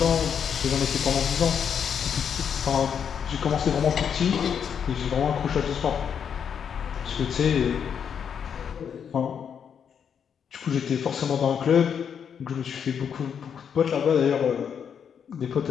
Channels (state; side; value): quieter; right; 7.6 dB